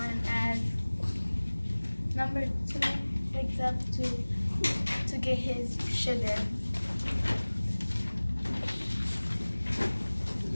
as number two wakes up to get his sugar.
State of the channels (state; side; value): inverted; both; correlation -1.00